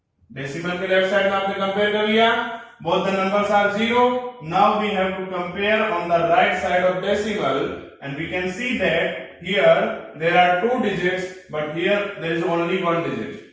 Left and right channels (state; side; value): identical; both; correlation 1.00